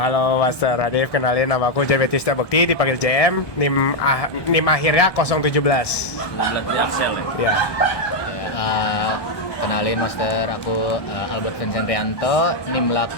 Master Arif, kenalin nama aku Jametista Bekti, dipanggil JM, NIM akhirnya 017. 19 dari Axel ya? Ya. Kenalin, Master, aku Albert Vincent Rianto, NIM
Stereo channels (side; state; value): right; late; 1.2 ms